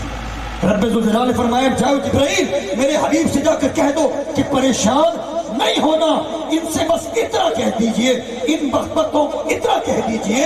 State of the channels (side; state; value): both; identical; correlation 1.00